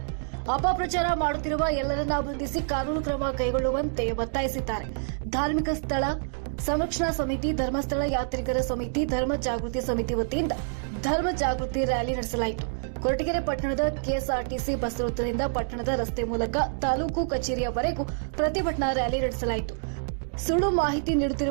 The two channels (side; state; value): left; silent; digital silence